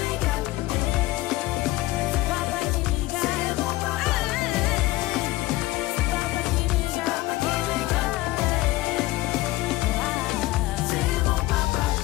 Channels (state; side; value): quieter; right; 18.1 dB